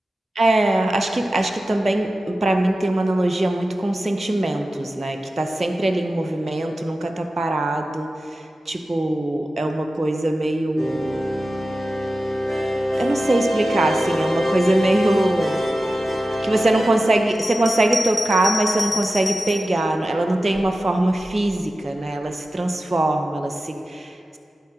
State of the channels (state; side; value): normal; both; correlation 0.94